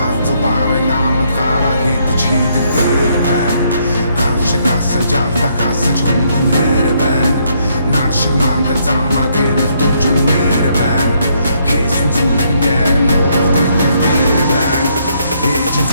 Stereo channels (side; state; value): both; inverted; correlation -0.72